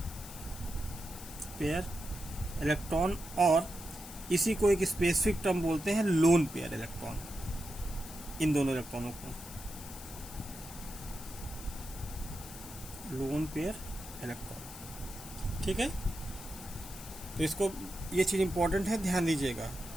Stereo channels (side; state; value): left; noise; hiss, 14 dB below the sound